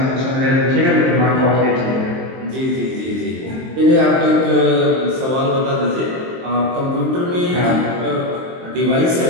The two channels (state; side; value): late; left; 23 ms